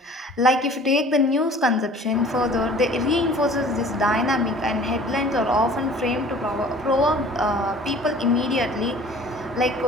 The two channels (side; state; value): both; normal; correlation 0.47